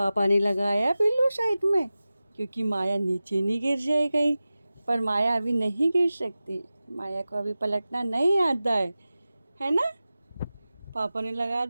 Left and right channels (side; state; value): both; inverted; correlation -0.96